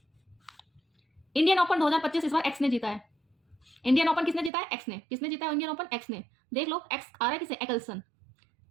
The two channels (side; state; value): left; drops out; at 4.5 s